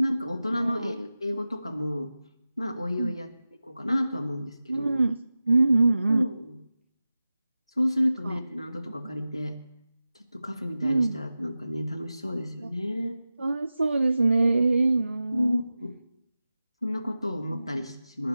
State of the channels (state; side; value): inverted; both; correlation -0.95